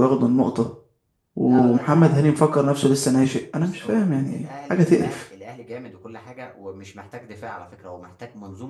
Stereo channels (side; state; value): both; identical; correlation 1.00